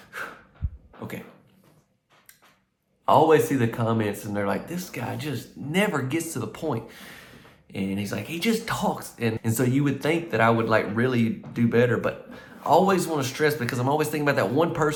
Okay. I always see the comments and they're like, this guy just never gets to the point. And he's like, he just talks. And so you would think that I would like really do better, but I always want to stress, because I'm always thinking about that one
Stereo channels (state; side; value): identical; both; correlation 1.00